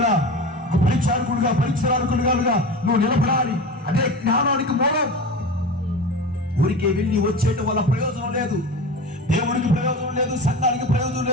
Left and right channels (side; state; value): both; normal; correlation 0.30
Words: ఒక పరిచారకుడుగా నువ్వు నిలబడాలి. అదే జ్ఞానానికి మూలం. ఊరికే వెళ్ళి వచ్చేయటం వల్ల ప్రయోజనం లేదు, దేవుడికి ప్రయోజనం లేదు, సంఘానికి ప్రయోజనం